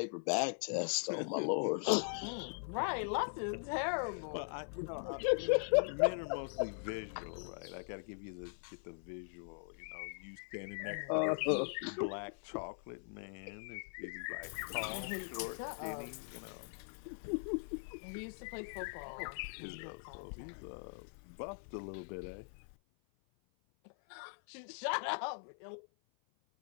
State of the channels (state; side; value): silent; right; 51 dB below the other